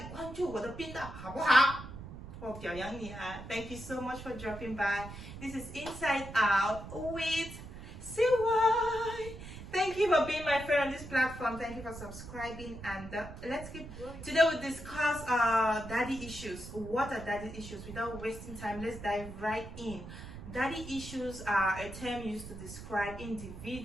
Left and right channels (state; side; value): noise; right; rumble, 12 dB below the sound